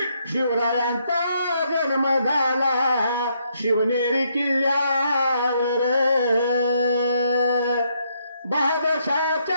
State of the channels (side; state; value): both; inverted; correlation -0.74